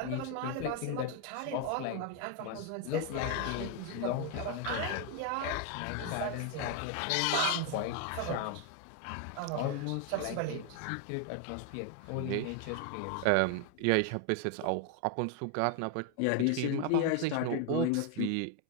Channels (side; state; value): both; different; correlation 0.01